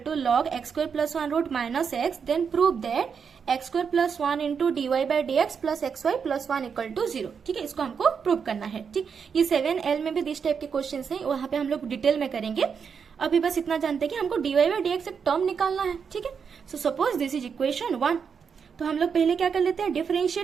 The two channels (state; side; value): quieter; left; 6.4 dB